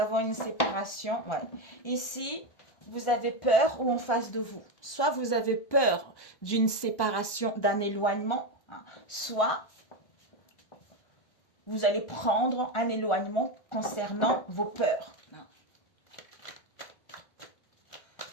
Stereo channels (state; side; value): late; right; 1.2 ms